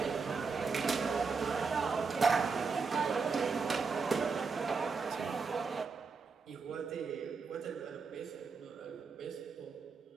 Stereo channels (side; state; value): left; quieter; 4.9 dB